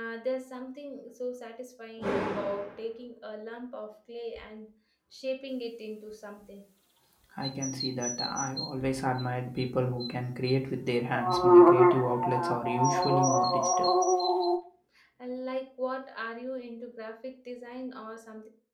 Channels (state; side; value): identical; both; correlation 1.00